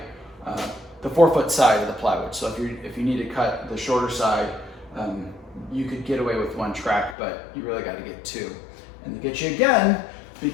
the 4-foot side of the plywood. So if you need to cut the shorter side, you could get away with 1 track, but you really gotta get 2. And they get you again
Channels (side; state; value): right; drops out; at 7.2 s